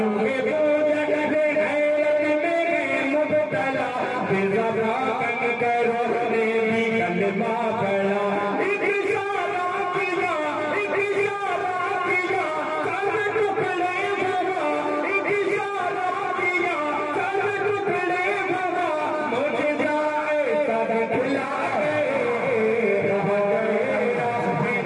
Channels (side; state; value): both; identical; correlation 1.00